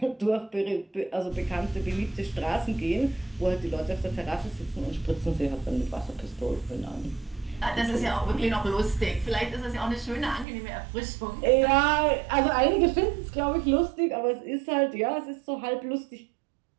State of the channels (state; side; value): drops out; left; at 10.5 s